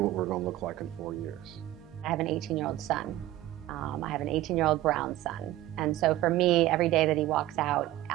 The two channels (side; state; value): left; quieter; 15.2 dB